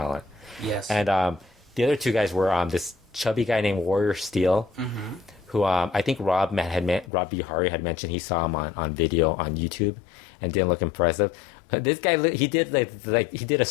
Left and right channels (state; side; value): drops out; right; at 7.1 s